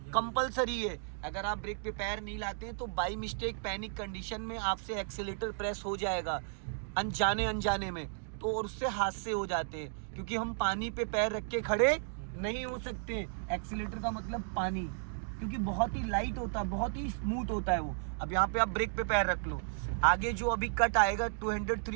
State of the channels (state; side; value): silent; left; digital silence